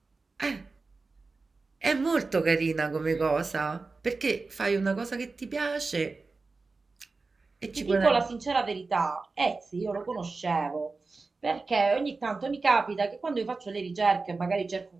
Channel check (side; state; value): left; quieter; 3.9 dB